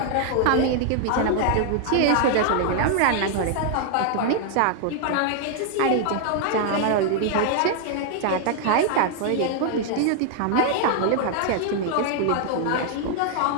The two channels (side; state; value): both; different; correlation 0.00